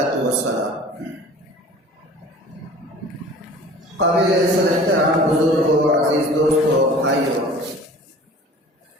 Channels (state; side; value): normal; both; correlation 0.45